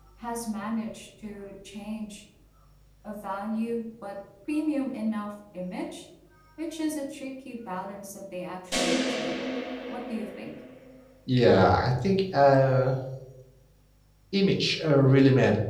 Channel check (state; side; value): identical; both; correlation 1.00